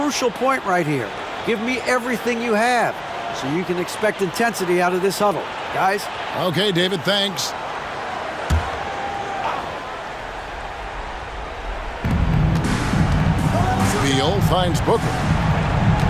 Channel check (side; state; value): both; identical; correlation 1.00